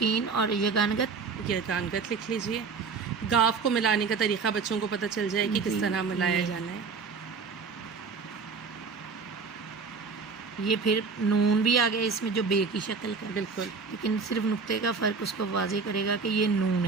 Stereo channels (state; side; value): quieter; left; 5.0 dB